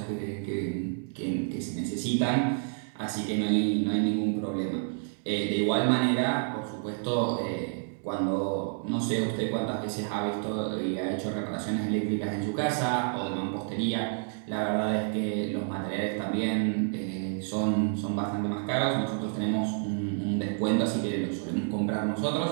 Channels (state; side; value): silent; left; 58 dB below the other